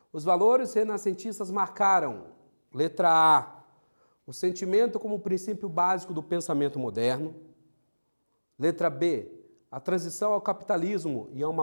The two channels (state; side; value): inverted; both; correlation -1.00